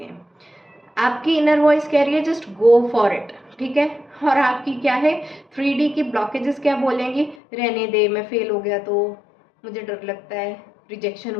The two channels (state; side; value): drops out; right; at 7.4 s